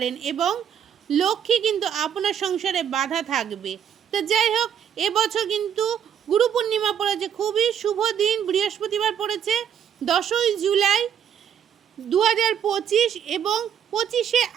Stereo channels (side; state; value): left; quieter; 8.9 dB